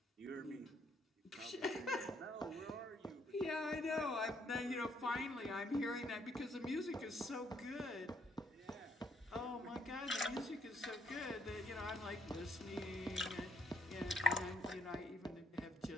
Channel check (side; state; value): both; normal; correlation 0.70